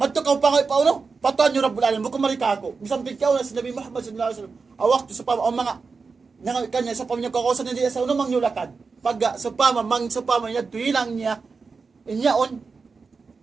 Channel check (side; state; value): left; quieter; 4.7 dB